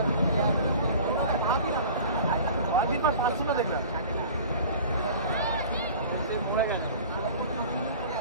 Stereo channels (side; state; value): both; inverted; correlation -0.41